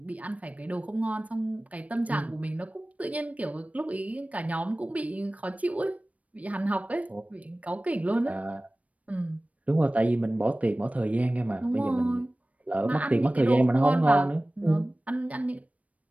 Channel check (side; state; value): left; late; 0.068 ms